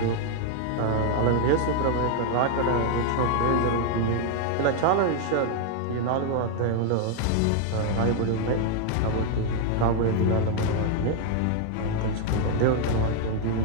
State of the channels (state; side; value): different; both; correlation 0.00